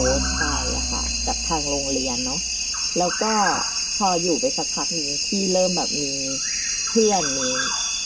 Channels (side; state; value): both; identical; correlation 1.00